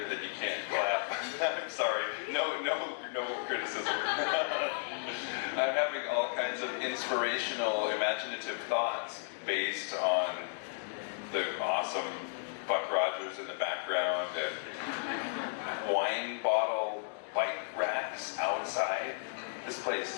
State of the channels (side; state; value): right; silent; digital silence